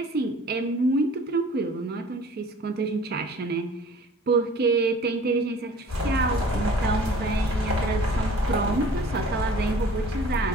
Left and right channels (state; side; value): normal; both; correlation 0.48